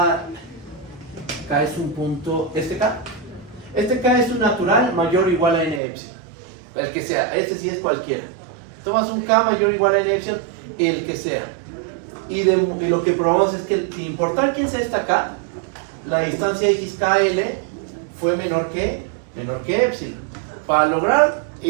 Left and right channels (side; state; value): left; drops out; at 5.8 s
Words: K es un punto, este K es un natural mayor o igual a n epsilon, el que sea, este sí es cualquiera. Tomas un K mayor o igual a n epsilon, el que sea, y lo que probamos es que sin importar quién sea esta K, la distancia XKL fue menor que epsilon. Para lograr